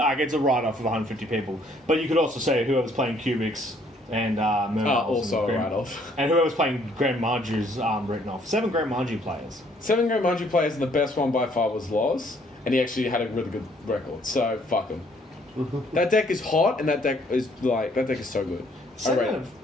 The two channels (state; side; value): normal; both; correlation 0.64